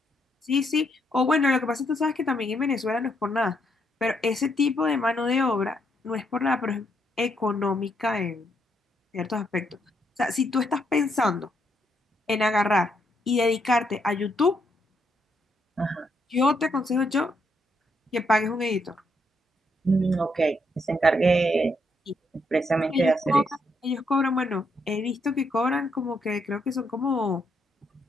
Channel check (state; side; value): normal; both; correlation 0.76